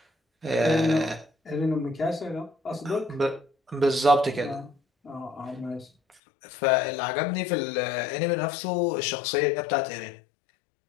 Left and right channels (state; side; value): drops out; right; at 6.2 s